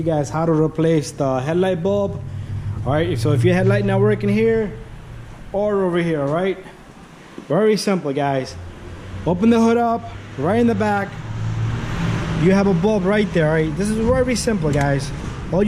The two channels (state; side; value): identical; both; correlation 1.00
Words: guys how to replace the headlight bulb. Alright, so if your headlight not working here or over here, alright, very simple guys. Open the hood up, right in the back you have a bulb right there. Alright, this is very simple guys. All